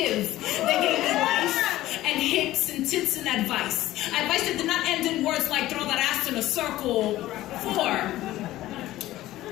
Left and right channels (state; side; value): quieter; right; 15.6 dB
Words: They gave me life and hips and tits and advice. Advice that did not end in words like throw that ass in a circle. 4,